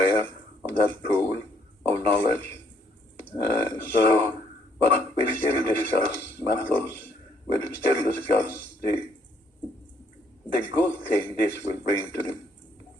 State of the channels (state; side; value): normal; both; correlation 0.67